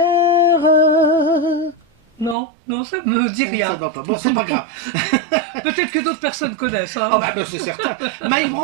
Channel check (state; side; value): drops out; left; at 2.4 s